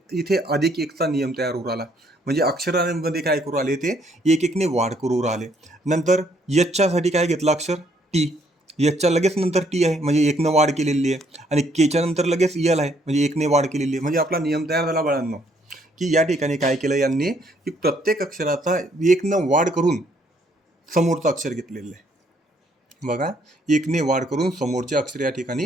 इथे अधिक एकचा नियम तयार होऊ आला. म्हणजे अक्षरांमध्ये काय करू आले ते एक एकने वाढ करू राहिले. नंतर यच्च्यासाठी काय घेतलं अक्षर टी, यच्च्या लगेच नंतर टी आहे म्हणजे एकनं वाढ केलेली आहे, आणि केच्या नंतर लगेच यल आहे म्हणजे एकने वाढ केलेली आहे. म्हणजे आपला नियम तयार झाला बाळांनो की या ठिकाणी काय केलं यांनी की प्रत्येक अक्षराचा एकनं वाढ करून समोरचं अक्षर घेतलेलं आहे. बघा एकने वाढ करून समोरचे अक्षर या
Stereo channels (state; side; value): normal; both; correlation 0.68